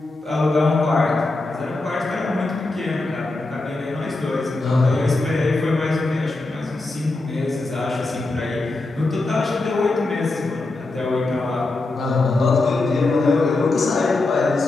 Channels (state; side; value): quieter; right; 3.2 dB